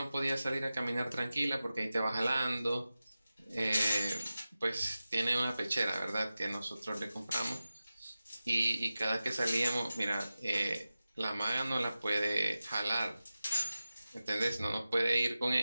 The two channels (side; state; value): both; inverted; correlation -0.95